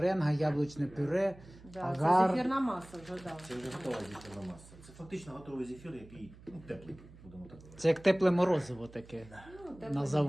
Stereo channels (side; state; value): right; noise; hum, 20 dB below the sound